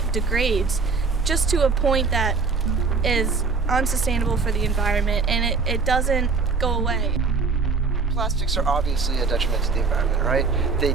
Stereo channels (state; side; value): quieter; left; 4.5 dB